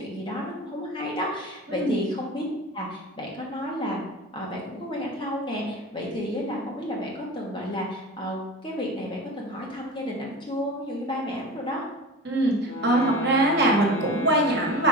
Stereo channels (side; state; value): both; normal; correlation 0.33